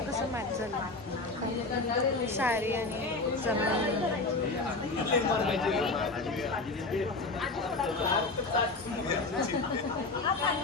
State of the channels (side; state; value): right; quieter; 3.4 dB